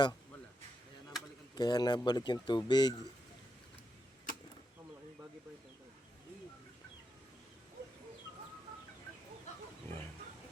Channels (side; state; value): both; normal; correlation 0.84